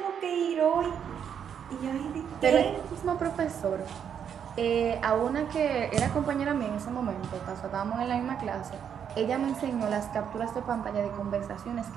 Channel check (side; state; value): left; quieter; 8.2 dB